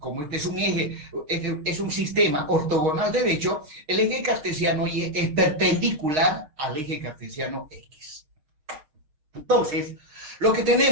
este es un sistema ortogonal derecho, el eje cartesiano Y es perpendicular al eje cartesiano X. Entonces, lo que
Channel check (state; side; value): late; left; 6.5 ms